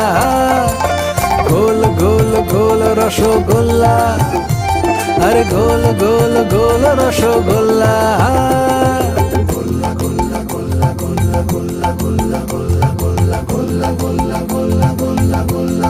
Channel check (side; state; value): both; identical; correlation 1.00